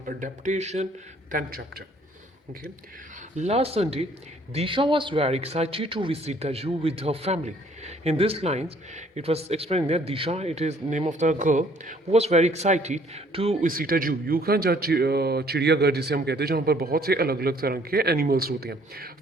Adaptation, 10th chapter. Okay. Last Sunday, Disha was very excited to visit the zoo with her family. In these lines, it was explained that Disha, it is name of the girl, who was very excited to visit a zoo. You can judge चिड़ियाघर जिसे हम कहते हैं जहाँ पर बहुत से अलग अलग तरह के एनिमल्स होते हैं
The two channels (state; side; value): normal; both; correlation 0.61